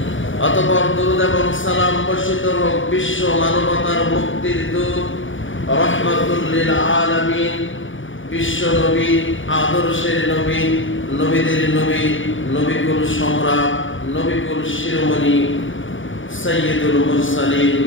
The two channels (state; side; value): late; right; 0.57 ms